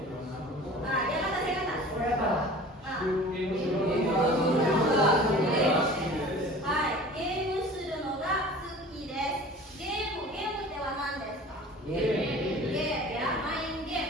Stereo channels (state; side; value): normal; both; correlation 0.42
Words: Nah, dia kata saya kata. Hai, game suru no ga suki desu. Game adalah nan desu ka? Game ya, main